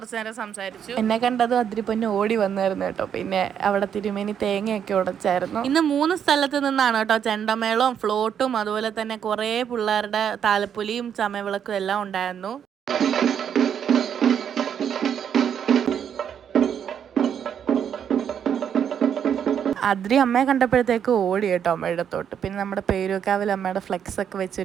നേരം സംസാരിച്ചു. എന്നെ കണ്ടതും അതിരിപ്പൊന്നെ ഓടി വന്നായിരുന്നു കേട്ടോ. പിന്നെ അവിടെ തിരുമേനി തേങ്ങയൊക്കെ ഉടച്ചായിരുന്നു. ഇന്ന് 3 സ്ഥലത്ത് നിന്നാണ് കേട്ടോ ചെണ്ടമേളവും ഫ്ലോട്ടും അതുപോലെ തന്നെ കുറേ പിള്ളേരുടെ താലപ്പൊലിയും ചമയവിളക്കും എല്ലാം ഉണ്ടായിരുന്നു. അതിരി അമ്മയെ കണ്ടപ്പോഴത്തേക്ക് ഓടി കേട്ടോ അമ്മയുടെ അടുത്തോട്ട്. പിന്നെ നമ്മുടെ പേരൂക്കാവിൽ അമ്മയുടെ ഫ്ലെക്സ് ഒക്കെ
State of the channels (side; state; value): left; quieter; 8.4 dB